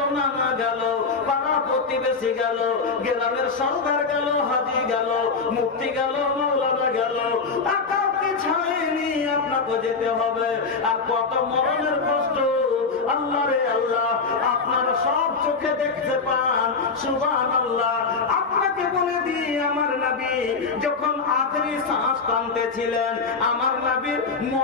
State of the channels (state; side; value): quieter; right; 4.7 dB